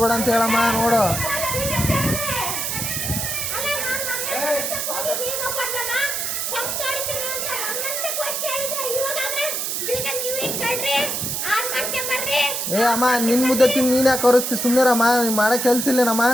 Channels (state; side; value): noise; right; hiss, 1 dB below the sound